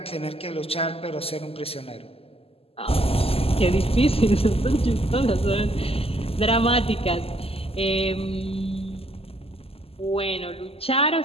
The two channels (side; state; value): right; late; 0.28 ms